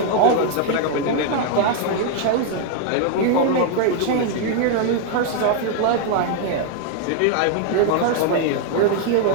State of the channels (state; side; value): different; both; correlation 0.00